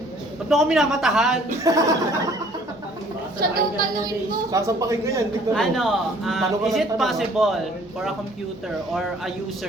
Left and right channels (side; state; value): both; normal; correlation 0.57